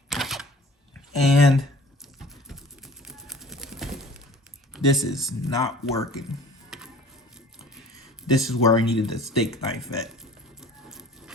And this is not working. This is where I needed the steak knife at.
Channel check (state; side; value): normal; both; correlation 0.47